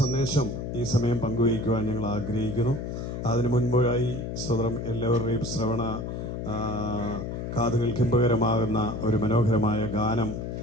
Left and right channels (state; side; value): noise; left; hum, 5 dB below the sound